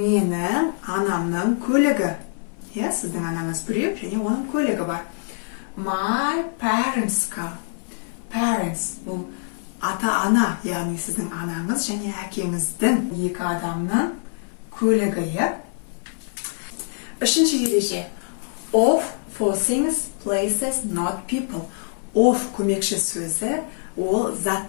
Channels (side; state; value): right; silent; 59 dB below the other